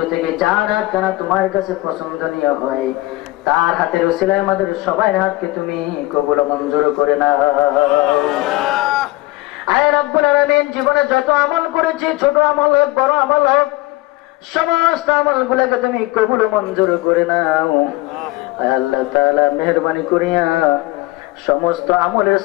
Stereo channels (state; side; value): quieter; right; 20.0 dB